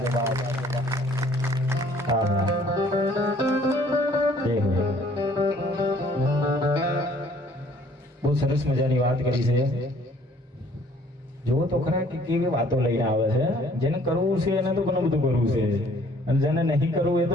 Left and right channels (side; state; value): both; normal; correlation 0.58